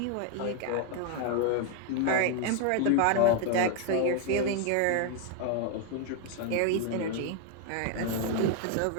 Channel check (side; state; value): both; different; correlation 0.01